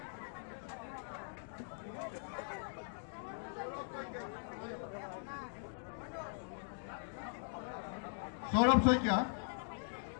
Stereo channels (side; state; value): right; silent; digital silence